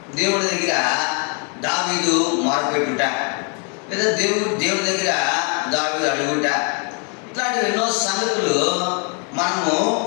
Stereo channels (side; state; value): right; quieter; 37.7 dB